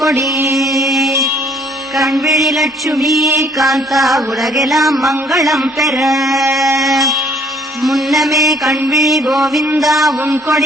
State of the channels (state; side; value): normal; both; correlation 0.61